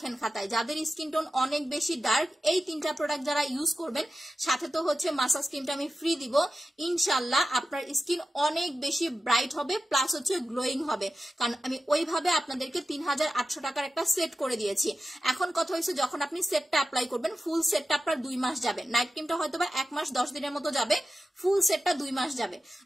খাতায়, যাদের স্কিন টোন অনেক বেশি ডার্ক, এই 3টা প্রোডাক্ট যারা ইউজ করবেন, সাথে তো হচ্ছে মাসাজ ক্রিমটা আমি ফ্রি দিব, ইনশাল্লাহ আপনার স্কিন অনেক বেশি ব্রাইট হবে প্লাস হচ্ছে গ্লোয়িং হবে। কারণ আমি ওইভাবে আপনাদেরকে 3800 টাকার একটা সেট করে দিয়েছি। এখন কথা হয়েছে যখন আপনি সেটটা অ্যাপ্লাই করবেন, ফুল সেটটা আপনার 2 মাস যাবে, নাইট ক্রিমটা হয়তো বা 1 মাস 10 দিনের মতো যাবে, ফুল সেটটা 2 মাস যাবে।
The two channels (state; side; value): normal; both; correlation 0.93